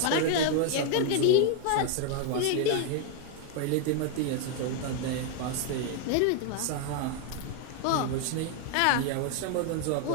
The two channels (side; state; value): both; different; correlation 0.00